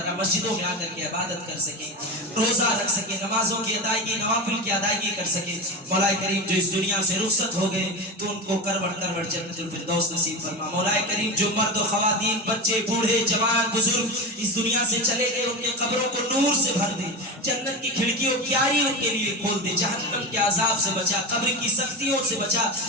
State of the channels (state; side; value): normal; both; correlation 0.22